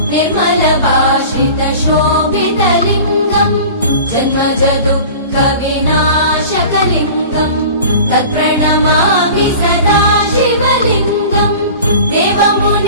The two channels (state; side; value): inverted; both; correlation -0.40